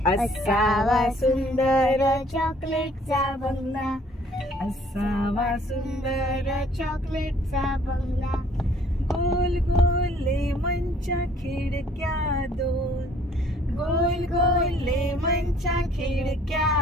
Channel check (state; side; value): normal; both; correlation 0.58